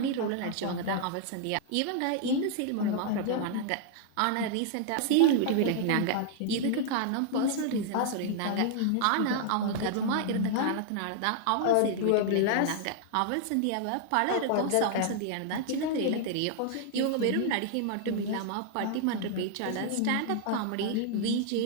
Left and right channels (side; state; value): both; different; correlation 0.00